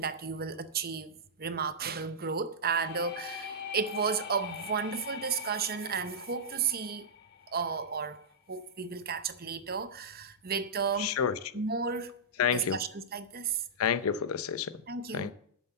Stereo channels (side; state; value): both; normal; correlation -0.13